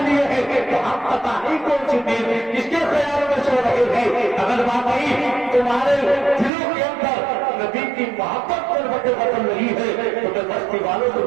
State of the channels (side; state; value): left; drops out; at 6.5 s